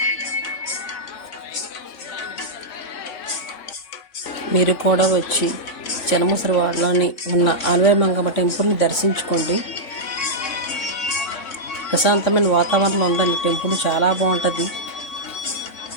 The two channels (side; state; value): right; late; 3.5 ms